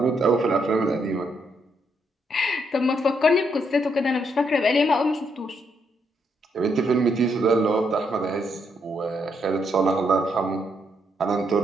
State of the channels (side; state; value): both; normal; correlation 0.76